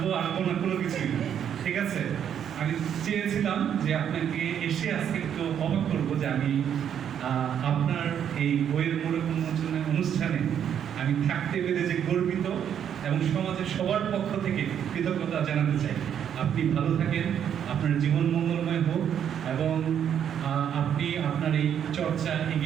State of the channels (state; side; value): quieter; left; 9.0 dB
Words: না, কোনো কিছুই না, ঠিক আছে। আমি চেয়েছিলাম যে আপনাকে এসে আজকে একটু অবাক করবো যে আমি আপনার এই বইয়ের মোড়ক উন্মোচনের অনুষ্ঠানে আমি থাকতে পেরে যে গর্বিত এবং সমাজের সবার পক্ষ থেকে কৃতজ্ঞতা জানাতে চাই। আপনি ভালো থাকেন, আপনার জীবন মঙ্গলময় হোক এবং আপনি আপনার এই চর্চা